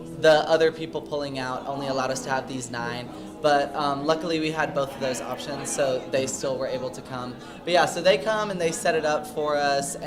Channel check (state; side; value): identical; both; correlation 1.00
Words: the other people pulling out only allowed us to have these 9. But luckily we had both of those options, so they still were able to come. But yeah, so they come and they set it up for us,